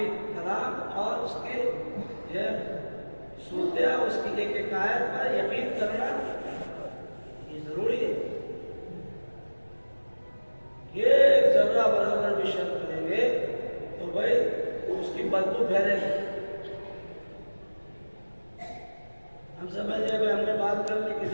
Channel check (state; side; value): inverted; both; correlation -1.00